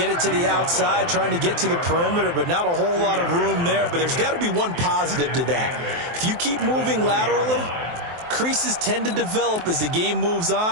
it to the outside, trying to get to the perimeter, but not a whole lot of room there. But there's got to be one positive to that. If you keep moving laterally, creases tend to develop as the game moves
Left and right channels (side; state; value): left; late; 23 ms